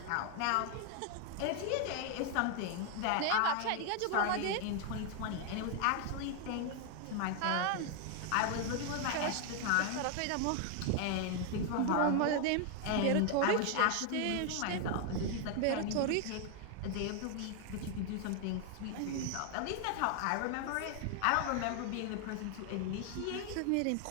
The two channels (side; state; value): both; different; correlation 0.00